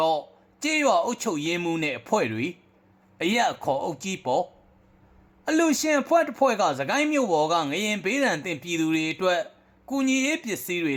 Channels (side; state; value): both; identical; correlation 1.00